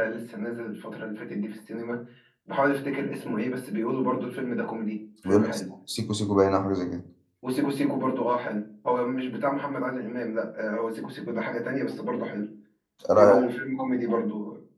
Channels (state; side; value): identical; both; correlation 1.00